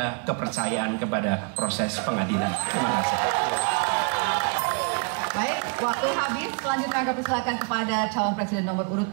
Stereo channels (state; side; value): quieter; left; 34.8 dB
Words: kepercayaan kepada proses pengadilan. Terima kasih. baik, waktu habis. Selanjutnya kami persilakan kepada calon presiden nomor urut